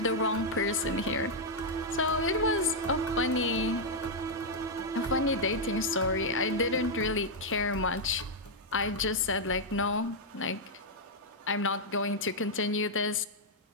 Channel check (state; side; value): normal; both; correlation -0.03